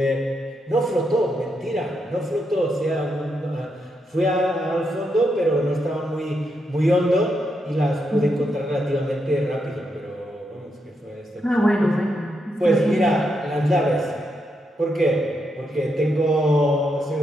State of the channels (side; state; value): both; normal; correlation 0.82